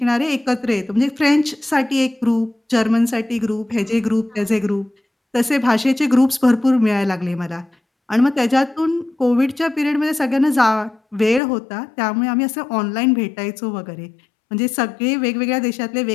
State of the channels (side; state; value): right; drops out; at 11.4 s